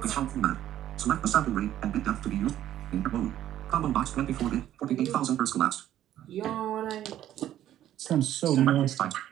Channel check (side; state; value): left; quieter; 12.1 dB